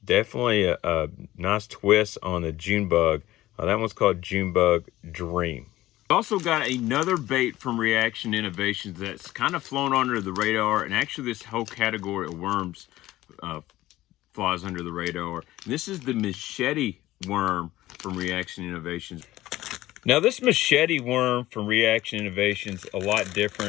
definitely a nice twist on the Junebug. That one's called Junebug Dream. Also got another bait from Reaction Innovations that's kind of flown under the radar, and actually this whole category of worms flies under the radar. And this is the machete worm from Reaction Innovations. Now this machete worm from Reaction Innovations a lot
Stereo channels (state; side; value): quieter; right; 16.0 dB